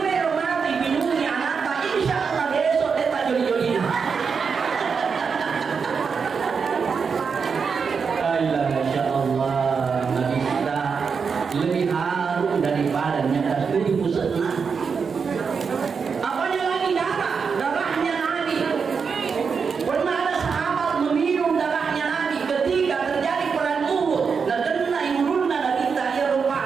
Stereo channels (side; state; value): left; quieter; 5.7 dB